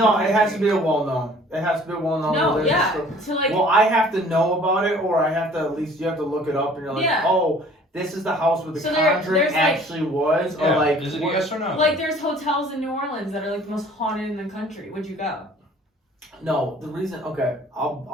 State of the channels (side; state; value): both; normal; correlation 0.52